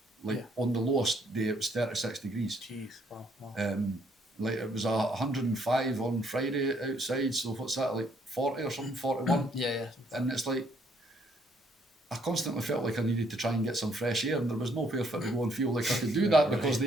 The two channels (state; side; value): normal; both; correlation 0.68